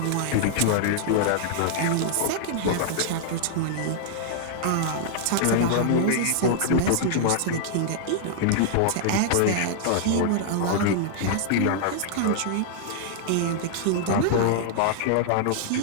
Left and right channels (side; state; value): both; different; correlation -0.01